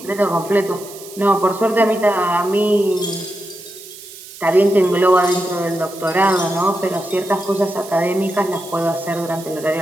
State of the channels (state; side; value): noise; right; hiss, 16 dB below the sound